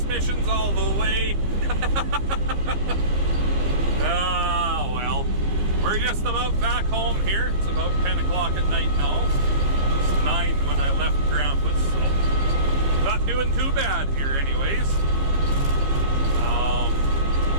all the way. Ah, well, we're just about back home here. It's about 10 o'clock at night now. It was 9 when I left Grandpa's, so not doing too bad here anyways.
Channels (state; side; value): late; left; 15 ms